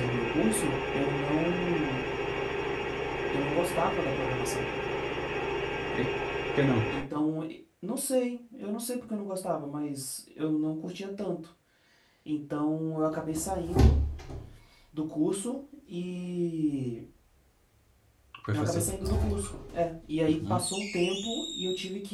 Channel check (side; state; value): both; identical; correlation 1.00